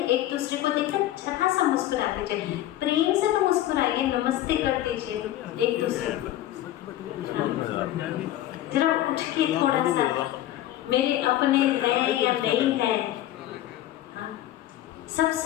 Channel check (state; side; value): quieter; right; 13.7 dB